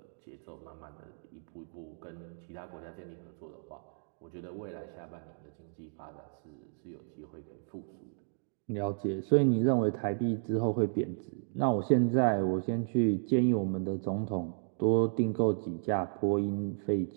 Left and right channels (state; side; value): silent; left; digital silence